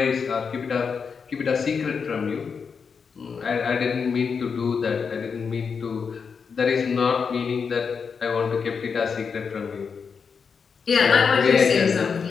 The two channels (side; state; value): right; quieter; 5.9 dB